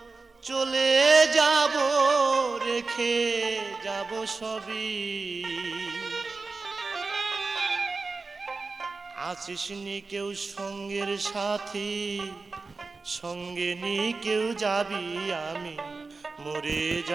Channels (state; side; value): quieter; left; 4.0 dB